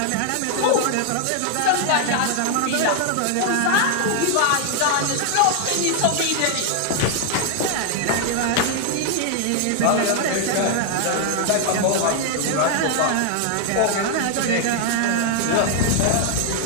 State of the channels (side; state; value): both; different; correlation 0.00